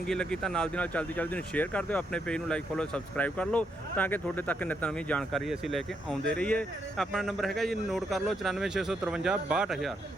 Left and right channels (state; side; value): normal; both; correlation 0.79